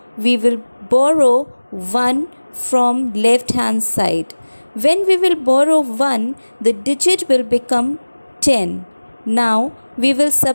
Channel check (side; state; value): both; inverted; correlation -1.00